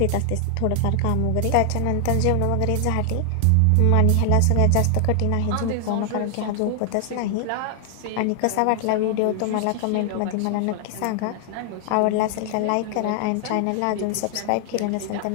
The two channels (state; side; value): different; both; correlation 0.00